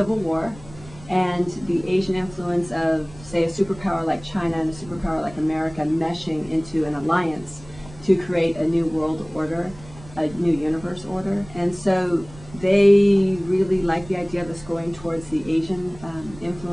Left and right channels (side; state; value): right; noise; rumble, 19 dB below the sound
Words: War and the Asian influence of, say, a superpower like China and a superpower like America meshing into an alliance to create a new world order, a new universe order. And so they really like the idea of us going towards the Asian